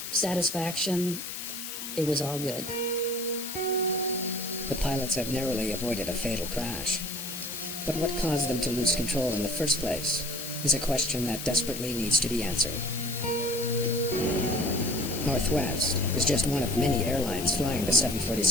satisfaction, it was all good. The pilots have narrowly avoided a fatal crash. But what caused them to lose control in the first place is a question that desperately needs to be answered. Northwest is just one of many airlines flying the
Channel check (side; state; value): left; noise; hiss, 7 dB below the sound